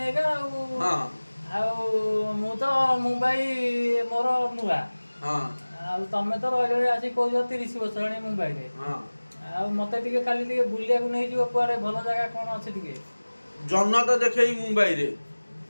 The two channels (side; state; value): both; inverted; correlation -1.00